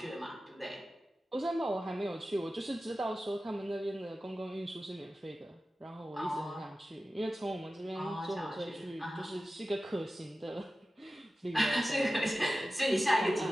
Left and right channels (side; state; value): both; normal; correlation 0.94